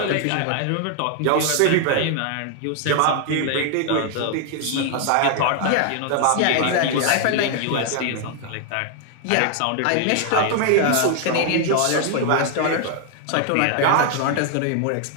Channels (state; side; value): different; both; correlation 0.00